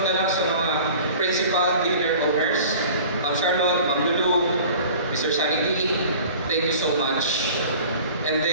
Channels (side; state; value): both; inverted; correlation -0.44